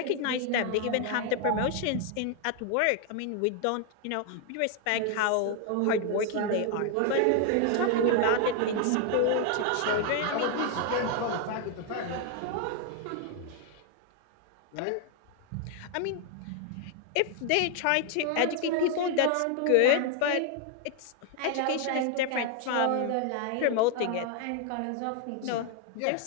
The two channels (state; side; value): different; both; correlation 0.00